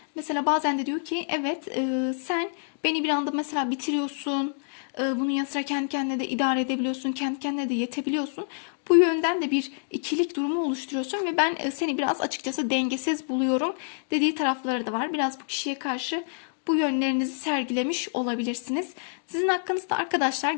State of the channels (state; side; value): silent; right; digital silence